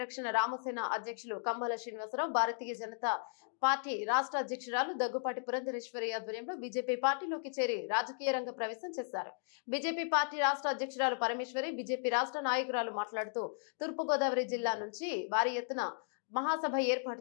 రామసేన అధ్యక్షులు కమ్మల శ్రీనివాసరావు భారతీయ జనతా పార్టీ రాష్ట్ర అధ్యక్షురాలు దగ్గుపాటి పురంధరేశ్వరి ఆధ్వర్యంలో బీజేపీ పార్టీలోకి చేరి రాజకీయ రంగ ప్రవేశం చేశారు. బీజేపీ పార్టీ రాష్ట్ర అధ్యక్షురాలు పరమేశ్వరి బీజేపీ రాష్ట్ర నాయకురాలు మాట్లాడుతూ తూర్పుగోదావరి జిల్లా నుంచి భారీ ఎత్తున మహాసభ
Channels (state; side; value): silent; right; digital silence